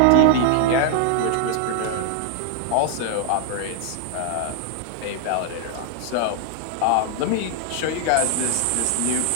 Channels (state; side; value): different; both; correlation 0.00